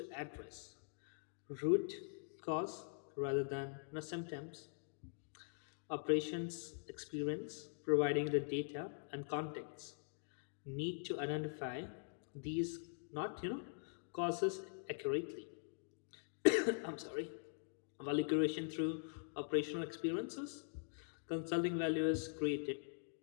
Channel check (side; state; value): right; silent; digital silence